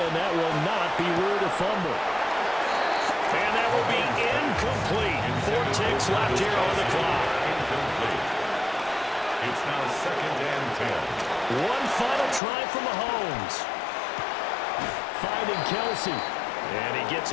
that will not be ruled a fumble. And that will be incomplete. 4 ticks left here on the clock. Incomplete. It's now 2nd and 10. One final try from Mahomes. Finding Kelsey. And he gets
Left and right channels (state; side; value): drops out; right; at 12.4 s